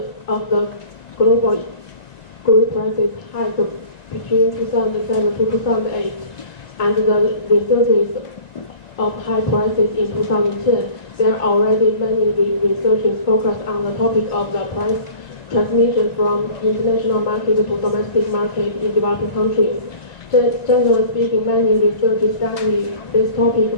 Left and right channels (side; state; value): right; late; 1.9 ms